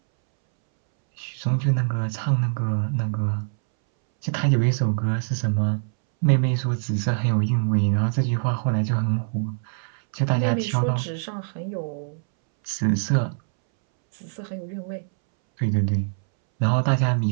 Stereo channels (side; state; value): left; silent; 63 dB below the other